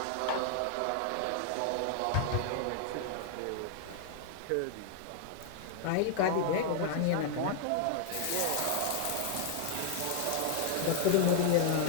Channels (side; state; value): both; different; correlation 0.00